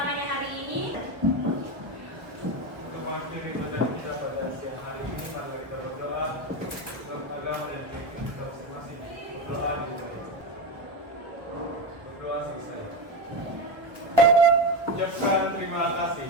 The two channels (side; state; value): left; late; 1.0 ms